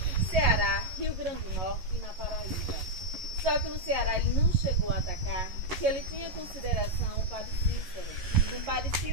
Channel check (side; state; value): left; late; 11 ms